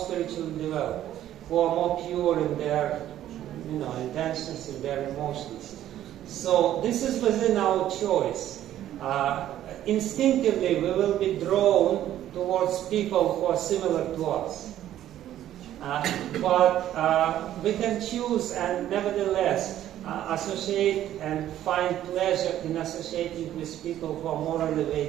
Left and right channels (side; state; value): left; quieter; 12.2 dB